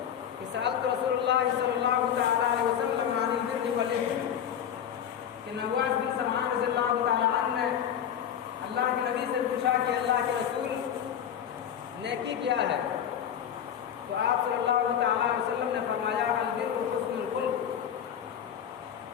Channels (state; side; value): quieter; right; 9.3 dB